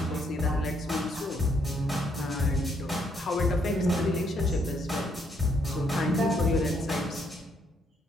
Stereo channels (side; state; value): both; normal; correlation 0.72